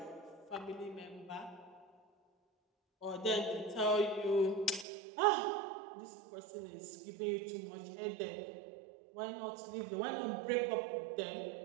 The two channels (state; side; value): drops out; left; at 4.9 s